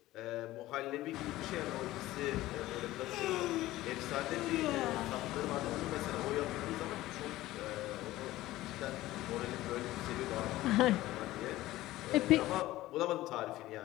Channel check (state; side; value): quieter; right; 16.5 dB